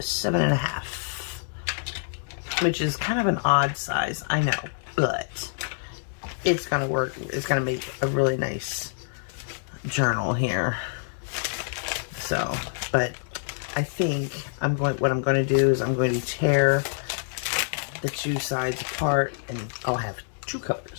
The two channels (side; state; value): right; silent; digital silence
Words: which is kind of an odd size, I know, but it's gonna work. It's gonna make a really nice journal here. So, but I think what I'm going to do is I'm going to tear the two sides apart, and I'll have two